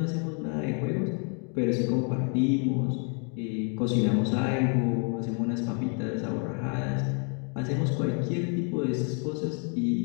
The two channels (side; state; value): right; quieter; 39.4 dB